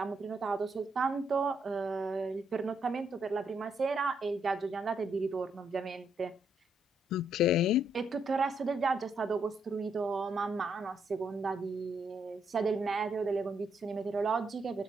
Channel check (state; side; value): normal; both; correlation 0.75